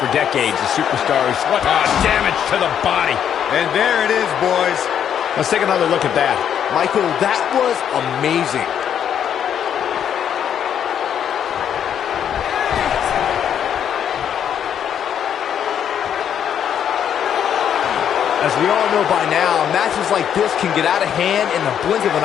decades. The superstars, what damage to the body. And there it is, boys. Let's take another look at that. Michael, that was amazing. As we all know by now, matches like this can get out of hand in the blink of an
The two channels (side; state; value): right; quieter; 9.0 dB